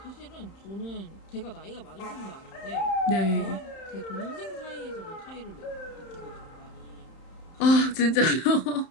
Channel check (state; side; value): late; right; 31 ms